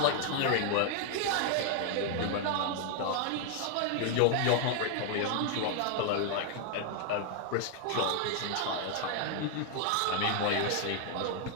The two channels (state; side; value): different; both; correlation 0.00